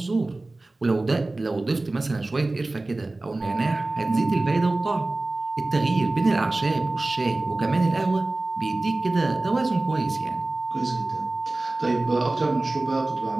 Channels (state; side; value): quieter; left; 3.0 dB